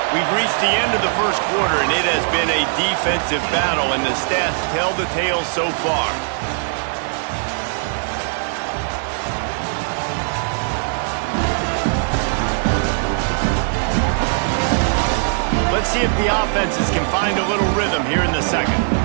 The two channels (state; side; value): silent; left; 66 dB below the other